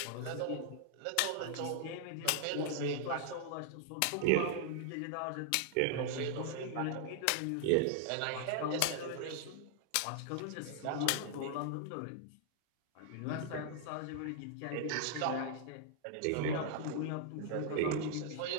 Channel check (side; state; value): both; different; correlation -0.01